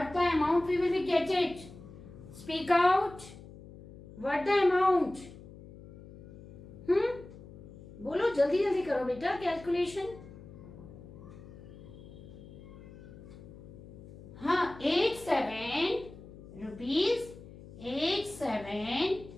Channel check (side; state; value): left; noise; hum, 17 dB below the sound